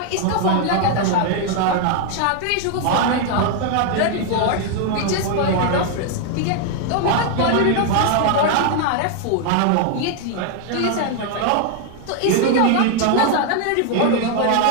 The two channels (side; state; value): both; different; correlation 0.00